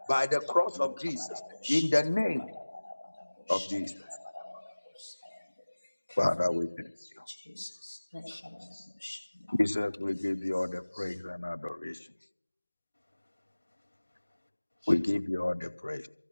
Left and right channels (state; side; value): inverted; both; correlation -1.00